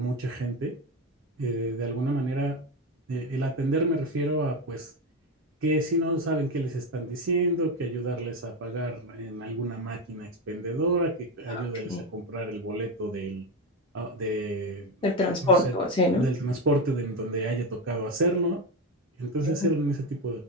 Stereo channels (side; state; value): both; normal; correlation 0.15